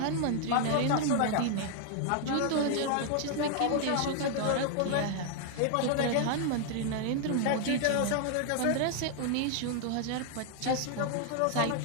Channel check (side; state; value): both; different; correlation 0.00